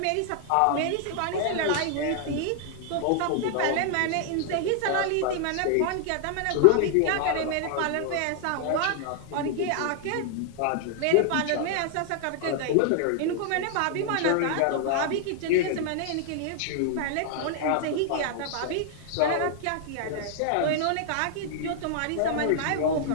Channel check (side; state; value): both; different; correlation 0.00